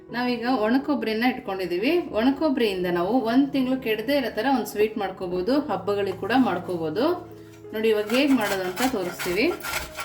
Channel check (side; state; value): both; identical; correlation 1.00